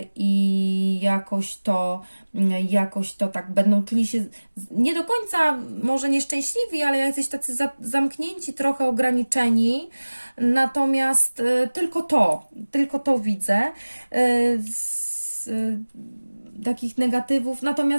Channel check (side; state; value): both; inverted; correlation -1.00